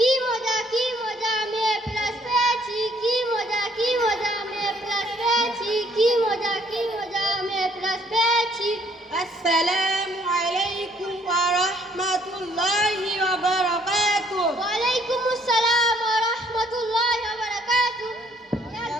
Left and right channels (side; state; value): both; normal; correlation 0.65